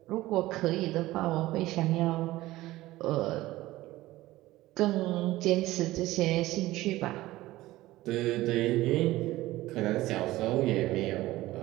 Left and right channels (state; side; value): quieter; left; 17.2 dB